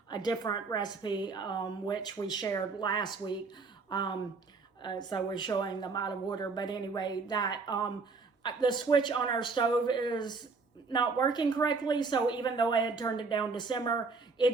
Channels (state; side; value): quieter; left; 4.3 dB